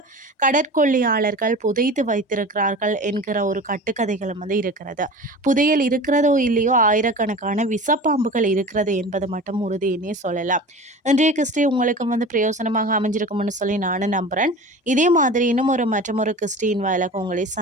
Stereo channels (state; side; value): normal; both; correlation 0.36